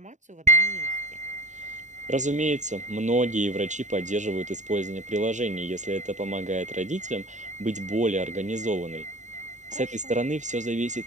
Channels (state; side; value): late; left; 0.35 ms